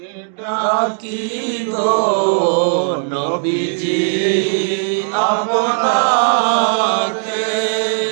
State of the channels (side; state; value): left; silent; digital silence